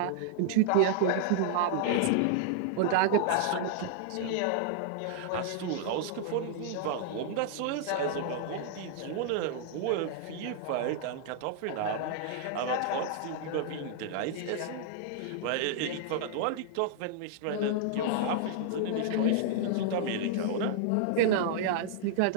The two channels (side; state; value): both; different; correlation -0.01